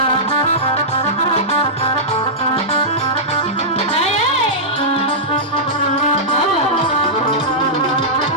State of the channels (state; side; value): normal; both; correlation -0.12